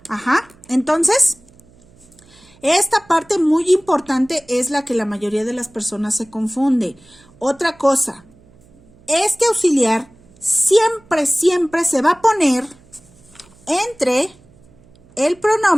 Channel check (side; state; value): right; noise; hum, 28 dB below the sound